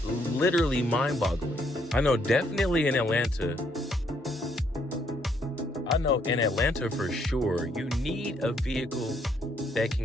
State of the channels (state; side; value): normal; both; correlation 0.70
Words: literally mind-boggling. I know definitely in Atlanta for sure, you need a vehicle that